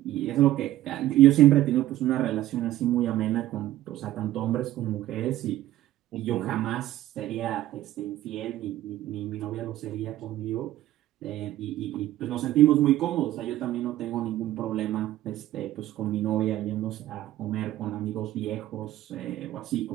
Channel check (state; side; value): quieter; left; 14.4 dB